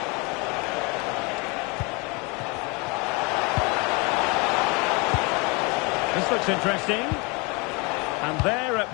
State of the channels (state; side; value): quieter; right; 29.1 dB